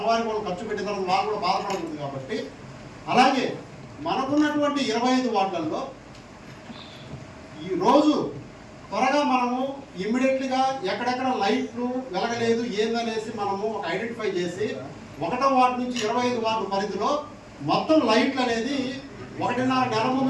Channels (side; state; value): both; identical; correlation 1.00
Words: వాళ్ళు ఖర్చు పెట్టిన తర్వాత వాళ్ళు కూడా బాధపడుతుంది కాబట్టి. అలాగే మనకున్నటువంటి 25 వార్డులలో ఈరోజు త్వరగా మనము ఇమ్మీడియట్లీగా ఎక్కడెక్కడ లైట్లు వెలగలేదు ఏందనేసి మనము ఐడెంటిఫై చేసి 1వ వార్డు నుంచి 25 వార్డు పరిధిలో మొత్తం లైట్లు అనేది 1.5 నెల